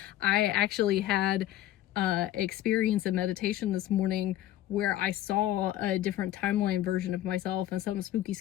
I actually had experience in meditation this morning where I saw a different timeline version of myself and something spooky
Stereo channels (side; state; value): right; quieter; 13.4 dB